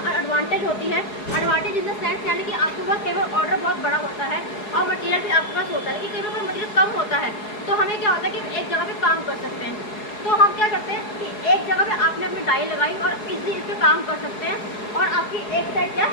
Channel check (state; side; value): late; right; 4.7 ms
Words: एडवांटेज होती है, एडवांटेज इन द सेंस यानी कि आपके पास कई बार ऑर्डर बहुत बड़ा होता है और मटेरियल भी आपके पास होता है कि कई बार मटेरियल कम होता है, तो हमें क्या होता है कि एक जगह पे काम कर सकते हैं। तो हम क्या करते हैं कि एक जगह पे आपने अपनी डाई लगाई और इजीली इस पर काम कर सकते हैं और आपकी एक साइड क्या